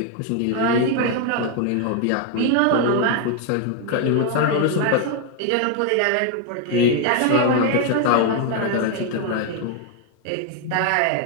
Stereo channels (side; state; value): both; different; correlation 0.00